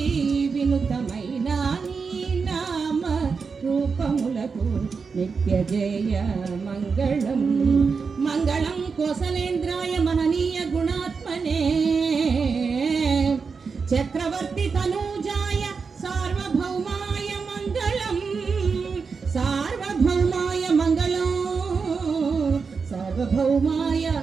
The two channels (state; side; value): quieter; left; 5.2 dB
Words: వినుతమైన నీ నామ రూపములకు నిత్య జయ మంగళం. మంగళం కోసలేంద్రాయ మహనీయ గుణాత్మనే చక్రవర్తి తనూజాయ సార్వభౌమాయ మంగళం. సార్వభౌమాయ మంగళం, సార్వభౌమాయ